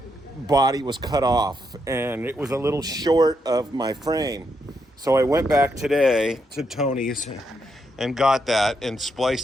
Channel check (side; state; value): both; normal; correlation 0.80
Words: body was cut off, and it was a little short of my frame. So I went back today to Tony's and got that and